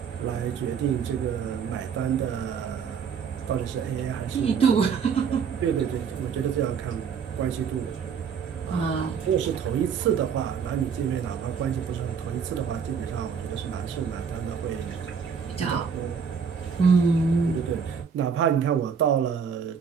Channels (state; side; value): quieter; left; 6.6 dB